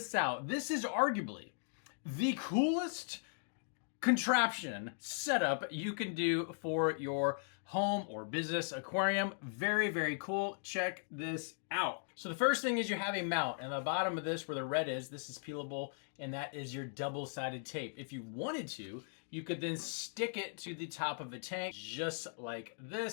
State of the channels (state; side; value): silent; right; digital silence